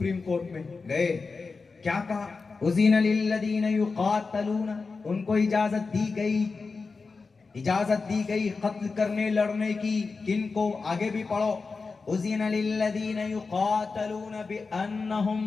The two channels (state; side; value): quieter; right; 4.4 dB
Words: कोर्ट में गए, क्या कहा, उज़ीना लिल्लज़ीना युक़ातलूना, उनको इजाजत दी गई कत्ल करने लड़ने की। किनको? आगे भी पढ़ो, उज़ीना लिल्लज़ीना युक़ातलूना बिअन्नहुम